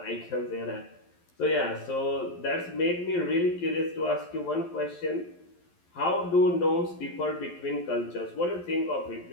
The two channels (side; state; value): right; late; 11 ms